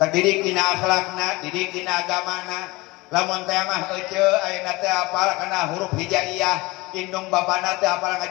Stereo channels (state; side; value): quieter; right; 22.3 dB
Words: didik dina akhlakna, didik dina agamana. Lamun teh mah euceu ayeuna teh apal kana huruf hijaiyah, indung babana teh apal